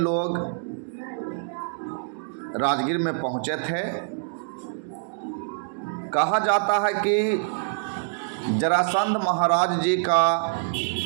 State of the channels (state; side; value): silent; left; digital silence